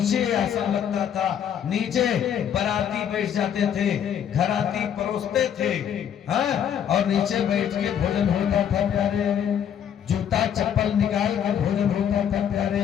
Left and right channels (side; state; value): right; quieter; 9.0 dB